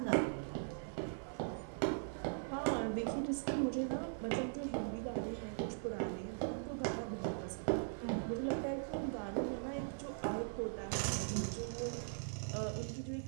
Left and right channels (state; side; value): silent; left; 51 dB below the other